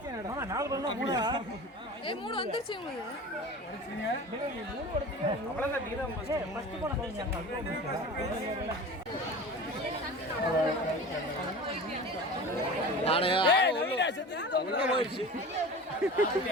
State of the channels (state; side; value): normal; both; correlation 0.35